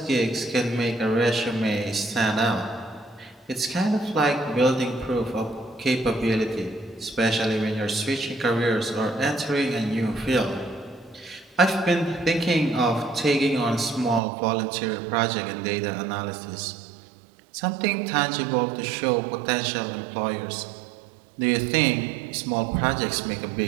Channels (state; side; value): drops out; left; at 14.2 s